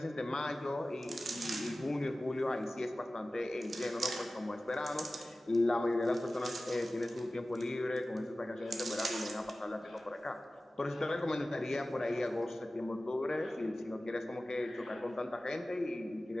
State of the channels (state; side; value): normal; both; correlation 0.96